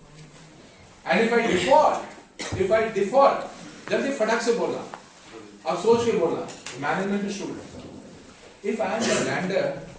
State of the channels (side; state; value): both; identical; correlation 1.00